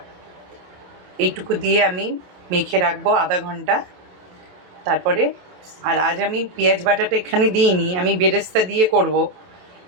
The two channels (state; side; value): late; left; 27 ms